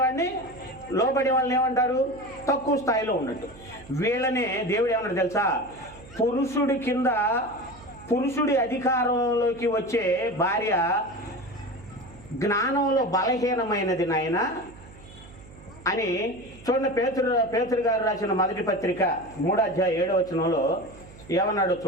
వాళ్ళని ఏమంటారు? తక్కువ స్థాయిలో ఉన్నట్టు. వీళ్ళనే దేవుడు ఏమన్నాడు తెలుసా? పురుషుడి కింద, పురుషుడి అధికారంలోకి వచ్చే భార్య జ్ఞానంలో బలహీనమైనది నాయన అని. చూడండి, పేతురు గారు రాసిన మొదటి పత్రిక 3:7 ఏమన్నాడో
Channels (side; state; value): right; noise; hum, 20 dB below the sound